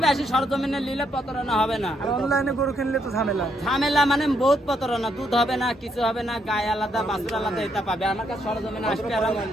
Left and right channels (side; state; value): both; normal; correlation 0.75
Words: আসি সরজমিনে নিলে প্রতারণা হবে না। আর অনলাইনে গরু কিনলে তো ঝামেলা। ঝামেলা মানে বহুত প্রতারণা। দুধ হবে না, কিছু হবে না, গায়ে আলাদা বাছুর আলাদা এটা পাবে। আমার কাছে সরজমিনে আসবে আর